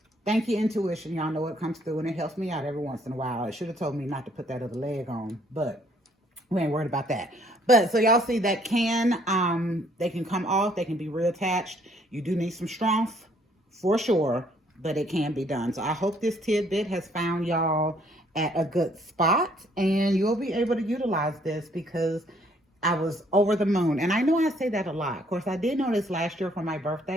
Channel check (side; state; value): both; normal; correlation 0.64